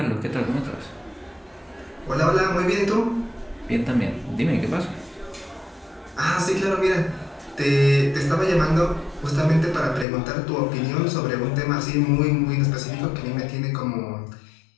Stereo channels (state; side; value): drops out; right; at 10.1 s